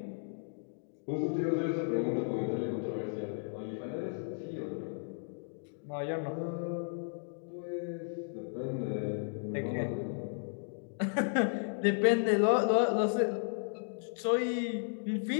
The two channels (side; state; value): right; silent; digital silence